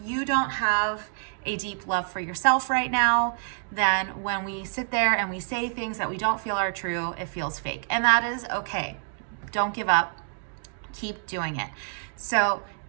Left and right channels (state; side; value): silent; left; digital silence